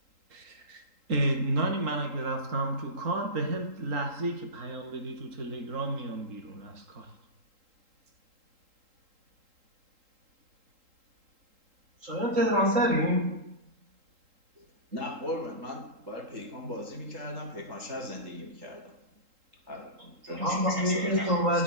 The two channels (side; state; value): left; late; 3.8 ms